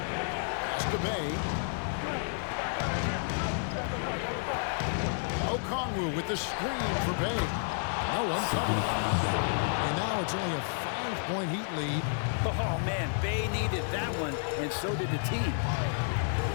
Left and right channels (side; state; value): right; silent; digital silence